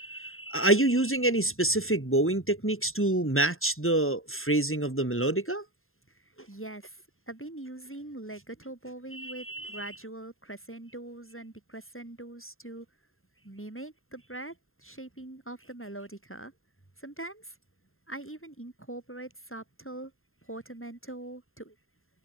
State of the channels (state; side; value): late; right; 0.61 ms